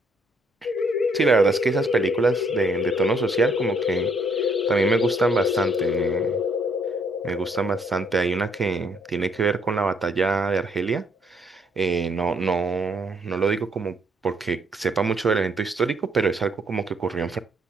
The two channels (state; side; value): normal; both; correlation 0.69